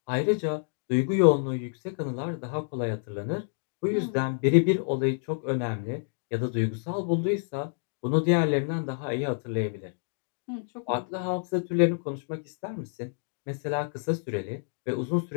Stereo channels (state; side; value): silent; right; digital silence